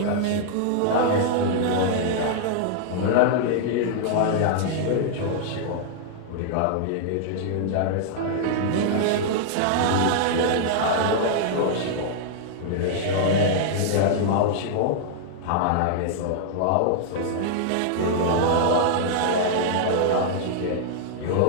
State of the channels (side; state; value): both; different; correlation -0.01